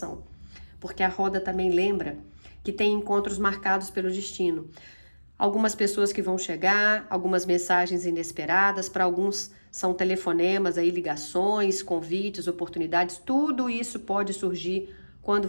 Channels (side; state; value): both; inverted; correlation -1.00